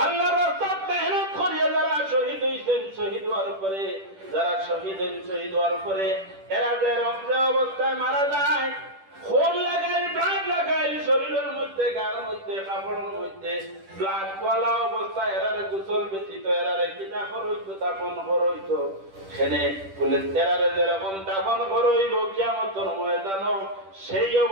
আল্লাহর রাস্তায় মেহনত করিয়া যারা শহীদ হইছেন, শহীদ হওয়ার পরে যারা শহীদ হওয়ার পরে এরা যে রক্তে অবস্থায় মারা যায়, খুন লাগাইল, ব্লাড লাগাইল শরীরের মধ্যে, গার মধ্যে, কাপড়ের মধ্যে ব্লাড পলা অবস্থায় এরারে গোসল ব্যতীত এরারে কিনা করইতো, দাফন করইতো। সেনে বলে এরারে যেরকম দাফন করইব কিয়ামতের ময়দানও সেই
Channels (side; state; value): left; late; 10 ms